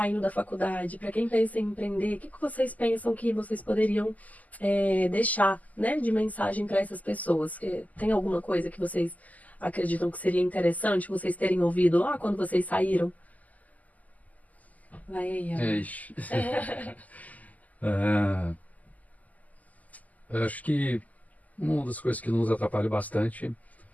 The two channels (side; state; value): right; late; 0.077 ms